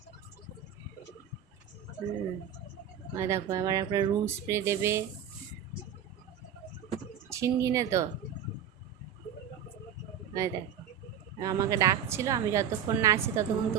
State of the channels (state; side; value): quieter; left; 8.8 dB